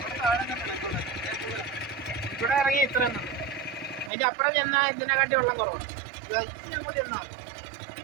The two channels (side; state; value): left; drops out; at 4.1 s